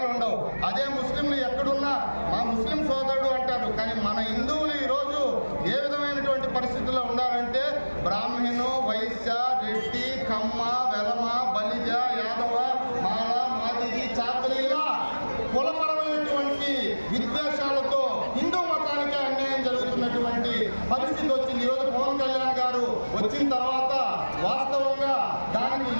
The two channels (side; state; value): both; inverted; correlation -1.00